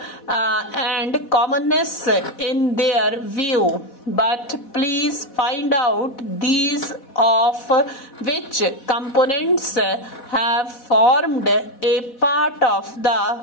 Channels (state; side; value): late; right; 3.9 ms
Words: and commonness in their view. But please find out these of which components have formed a part of